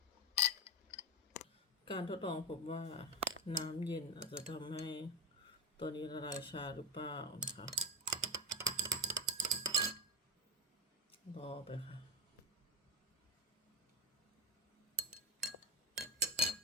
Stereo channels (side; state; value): both; normal; correlation 0.14